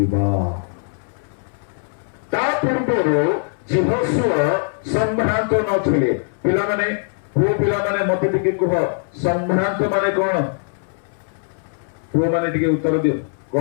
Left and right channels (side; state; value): right; silent; 65 dB below the other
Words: ता पूर्वरो जिहोशुआ संभ्रांत नथिले पिला माने पुओ पिला माने मते टिके कह संभ्रांत माने कोन पुओ माने टिके उत्तर दियो